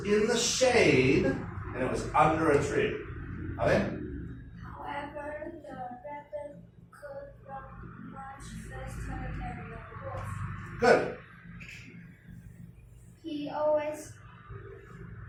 in the shade, and it was under a tree. Okay? However, the rabbit could run much faster than the wolf. Good. He always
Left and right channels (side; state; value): both; identical; correlation 1.00